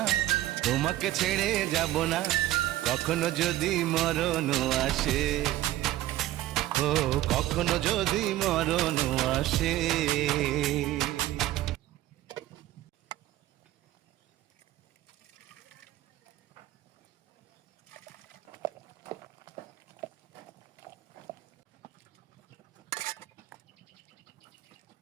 তোমাকে ছেড়ে যাব না, কখনো যদি মরণ আসে, ও কখনো যদি মরণ আসে।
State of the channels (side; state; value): left; quieter; 15.1 dB